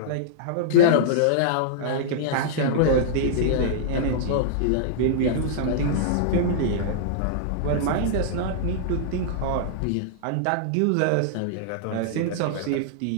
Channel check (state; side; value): different; both; correlation -0.02